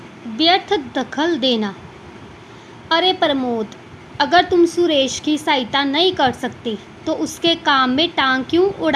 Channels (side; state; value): both; identical; correlation 1.00